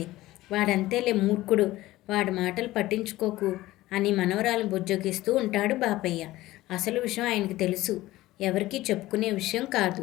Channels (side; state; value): right; quieter; 17.1 dB